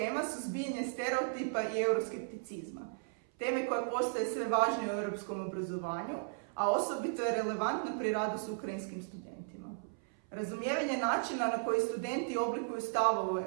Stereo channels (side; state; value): left; silent; 54 dB below the other